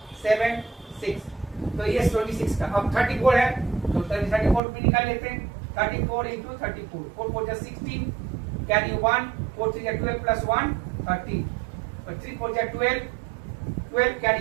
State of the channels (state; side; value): drops out; left; at 4.6 s